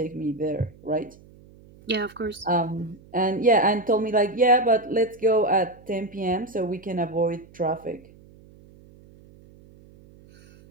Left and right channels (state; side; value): noise; right; hum, 24 dB below the sound